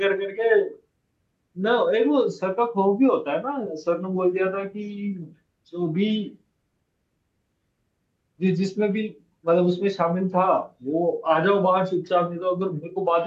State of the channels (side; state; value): both; identical; correlation 1.00